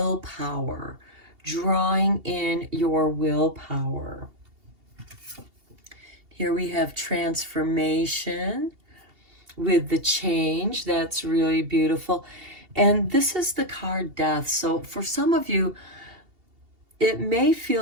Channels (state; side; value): late; left; 2.8 ms